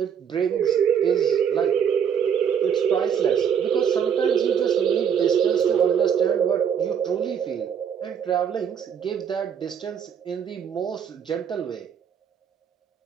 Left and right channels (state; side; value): quieter; left; 7.9 dB